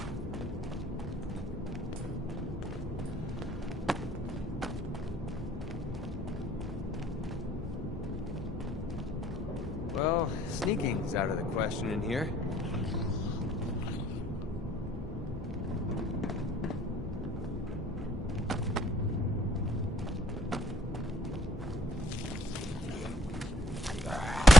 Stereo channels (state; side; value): normal; both; correlation 0.62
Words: Well, sneaking's out of the question in here.